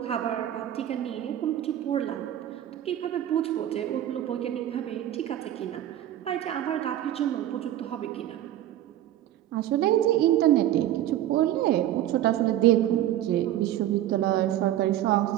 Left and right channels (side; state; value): left; quieter; 12.6 dB